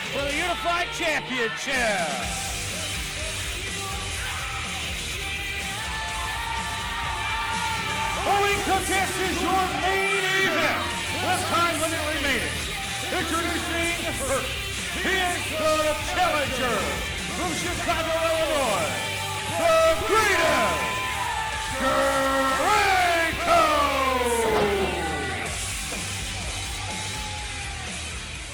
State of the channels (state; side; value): identical; both; correlation 1.00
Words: for the Unified Championship. Owing contest is your main event with time limit remaining. Introducing first, he is the challenger from Chicago, Illinois, the greatest Draco!